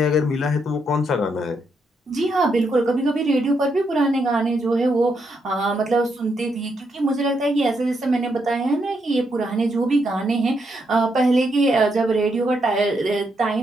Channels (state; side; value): normal; both; correlation 0.79